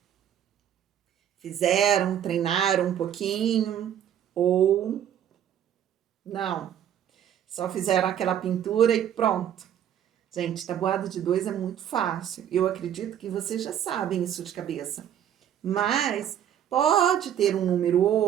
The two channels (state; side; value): quieter; left; 10.0 dB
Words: Fizeram, treinaram um pouquinho ou não? Só fizeram aquela pintura e pronto. Gente, tabuada de 2 é muito fácil. Eu acredito que vocês já sabem isso de cabeça. Mas pode ter um número